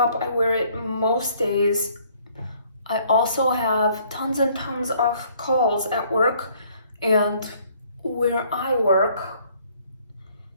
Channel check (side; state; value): both; inverted; correlation -0.62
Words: I wear it most days. I also have tons and tons of calls at work, and where I work,